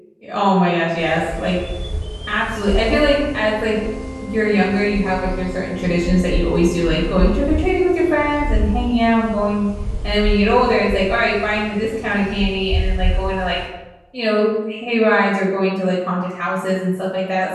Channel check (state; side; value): identical; both; correlation 1.00